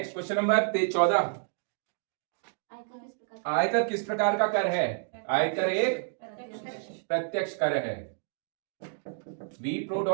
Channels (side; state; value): left; silent; 58 dB below the other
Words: क्वेश्चन नंबर 14, आयकर किस प्रकार का कर है? आयकर एक प्रत्यक्ष कर है।